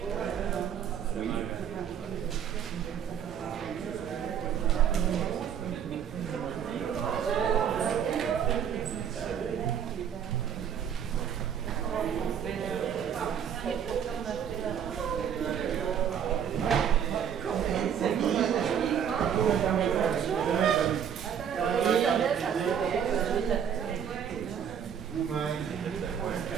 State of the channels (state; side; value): quieter; left; 8.4 dB